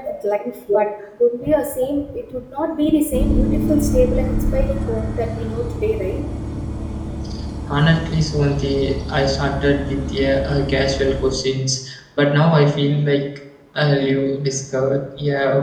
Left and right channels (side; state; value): both; identical; correlation 1.00